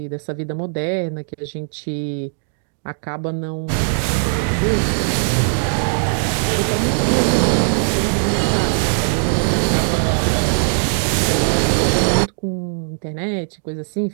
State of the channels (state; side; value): silent; left; digital silence